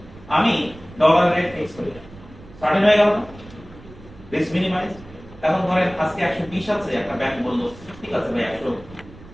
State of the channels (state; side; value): noise; right; rumble, 20 dB below the sound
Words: আমি ডলার রেট ফিক্স করি সার্টেন হয়ে গেল না রিস্ক মিনিমাইজ এখন ধরেন আজকে 120 আছে একটা ব্যাংক বললো ঠিক আছে ভাই